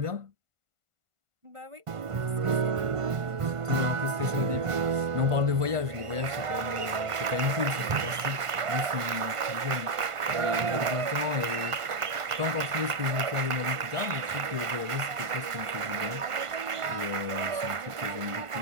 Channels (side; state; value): left; late; 1.5 ms